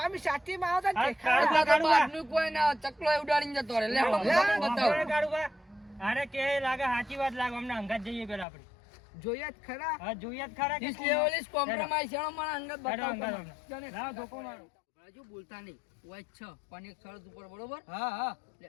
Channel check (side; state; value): right; drops out; at 8.5 s